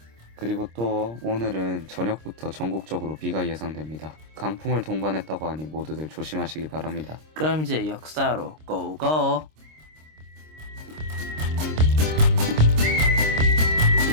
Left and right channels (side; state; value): left; late; 26 ms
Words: 그리고 또 오늘은 저녁부터 전국적으로 비가 예상됩니다. 강풍을 동반했다고 하니 모두들 조심하시기 바랍니다. 그럼 이제 역사로 고고!